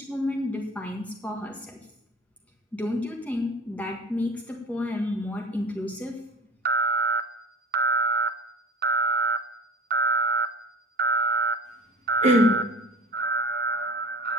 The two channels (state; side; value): normal; both; correlation 0.37